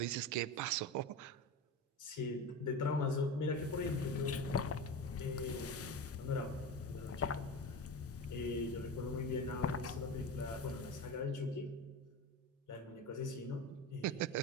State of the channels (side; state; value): both; normal; correlation 0.25